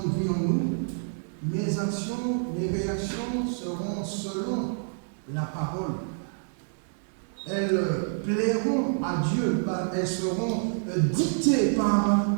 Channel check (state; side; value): silent; left; 60 dB below the other